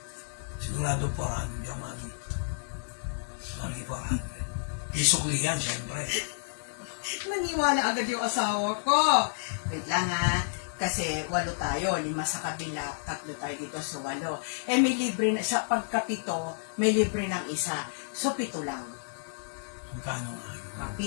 Sigurado 400 yung mami. Mami 400. Isukli yan, siyempre. Naniwala agad yung asawa ko. Wait lang ha. Kasi 8 tayo, 5 sa kabila, 3 tayo dito sa 8. May libre na, sa pagkapito, may libre ng isa. So 7 lang. Magkano nga yun?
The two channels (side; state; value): right; silent; digital silence